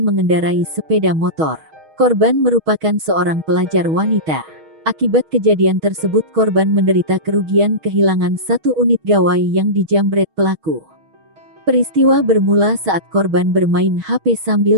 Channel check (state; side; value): late; left; 6.3 ms